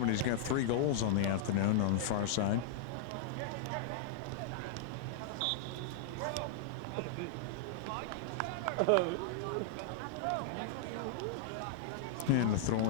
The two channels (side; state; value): both; normal; correlation -0.01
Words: He's got 3 goals on the afternoon on the far side. And the throw